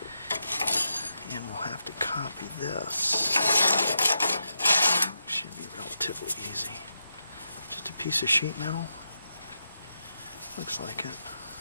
And we'll have to copy this. Should be relatively easy. Just a piece of sheet metal. Looks like it.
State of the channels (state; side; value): inverted; both; correlation -0.86